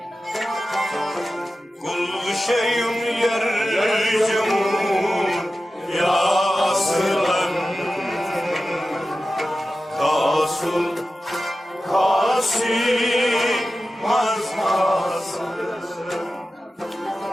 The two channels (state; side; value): normal; both; correlation 0.94